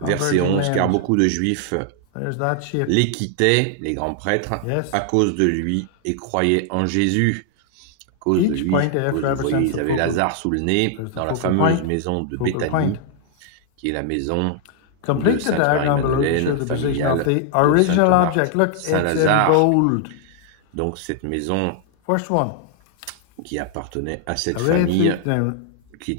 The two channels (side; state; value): both; different; correlation 0.00